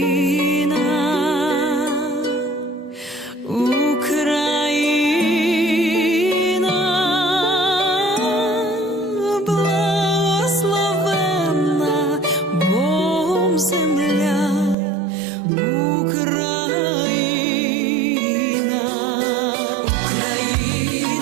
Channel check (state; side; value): drops out; left; at 14.8 s